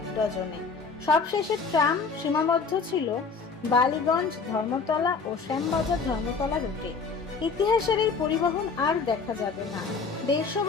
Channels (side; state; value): right; quieter; 4.9 dB